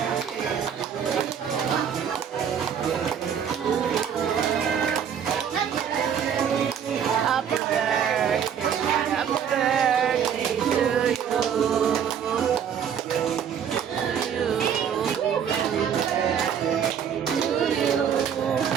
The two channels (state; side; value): quieter; left; 8.1 dB